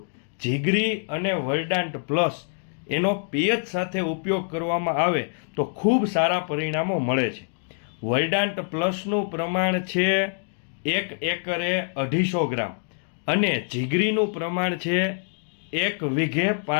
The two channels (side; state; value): right; silent; digital silence